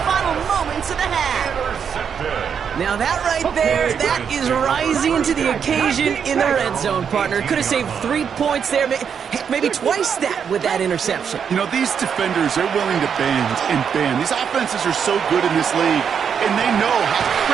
final moments of the half. Now that right there, that is rising to the occasion in the red zone, partner. Could have saved 3 points there, maybe twice that with that interception. You know, these defenders, they're willing to bend and bend. These offenses are so good in this league, and they know how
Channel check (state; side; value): quieter; left; 7.3 dB